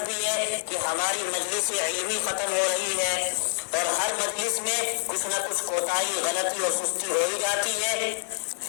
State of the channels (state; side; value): silent; right; digital silence